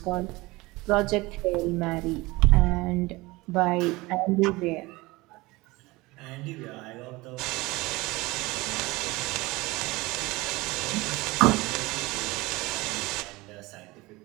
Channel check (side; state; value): left; quieter; 21.8 dB